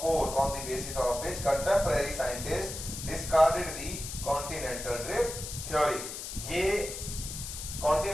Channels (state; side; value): noise; left; hiss, 8 dB below the sound